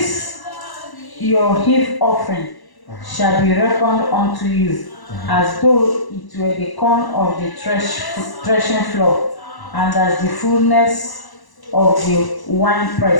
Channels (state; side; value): late; right; 1.0 ms